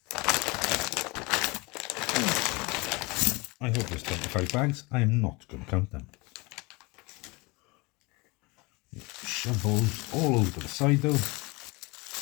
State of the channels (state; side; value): quieter; right; 25.8 dB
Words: I hope there's 25 bags. I am not going to count them. Shove those all over to the side though.